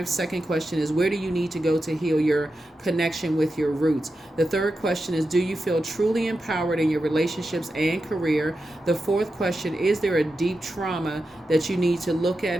Second question is, where do you need to go to heal your connection with your roots? The third question is, do you feel truly empowered in your relationships and career? The fourth question, is there a deep trauma that you need to look at,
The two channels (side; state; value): both; normal; correlation 0.90